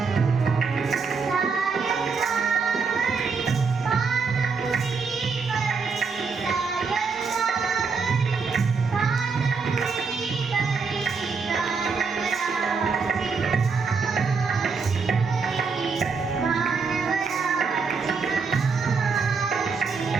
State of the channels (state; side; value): quieter; left; 5.0 dB